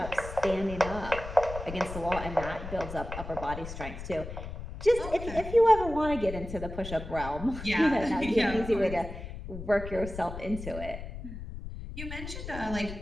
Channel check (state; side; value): noise; left; rumble, 9 dB below the sound